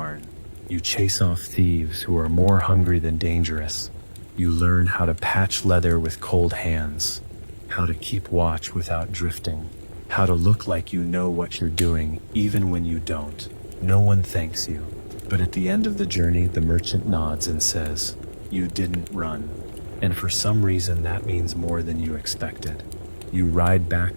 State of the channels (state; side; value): inverted; both; correlation -1.00